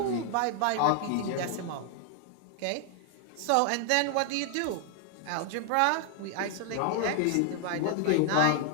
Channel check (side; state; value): both; different; correlation 0.00